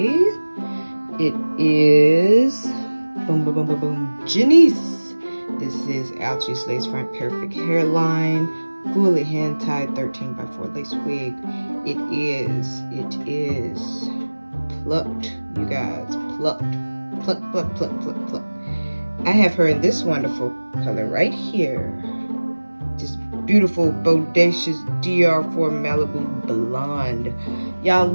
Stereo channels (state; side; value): inverted; both; correlation -1.00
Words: It is boom boom boom boom boom Jenisse. This is Outre's lace front perfect hairline, fully hand tied 13x4 lace wig. It is plucked, you guys, plucked. Pluck. I have her in this wonderful color right here. This beautiful, bodacious DR4 Malibu blonde. Y'all,